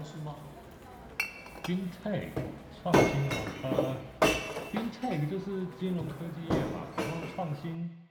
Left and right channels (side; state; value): both; identical; correlation 1.00